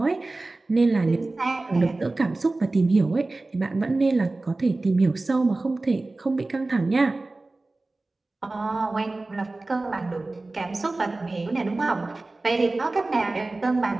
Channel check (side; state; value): left; quieter; 3.1 dB